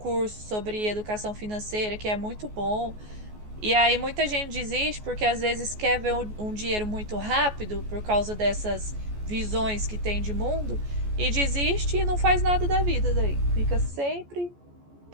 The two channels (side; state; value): left; late; 14 ms